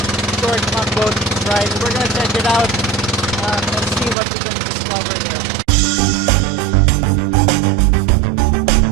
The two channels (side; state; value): left; drops out; at 4.2 s